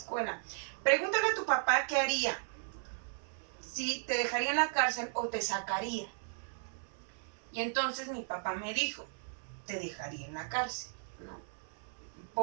pregúntale a tu papá qué haría. Si te dejaría en la cárcel o te sacaría. Y entonces mi papá me dijo, te dejaría en la cárcel, ¿no?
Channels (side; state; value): left; silent; 54 dB below the other